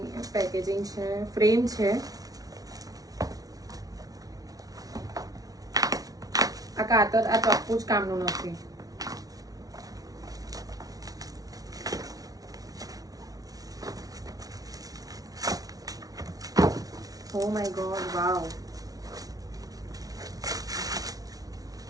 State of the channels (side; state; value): left; late; 0.18 ms